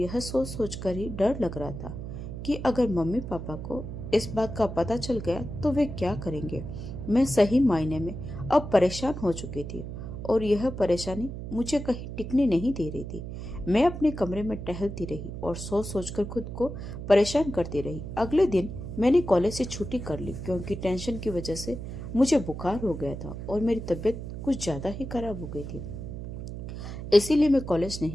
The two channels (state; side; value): noise; right; hum, 8 dB below the sound